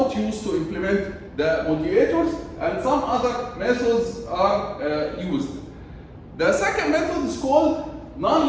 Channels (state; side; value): identical; both; correlation 1.00